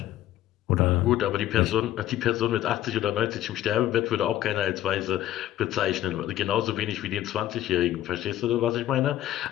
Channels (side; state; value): right; quieter; 12.9 dB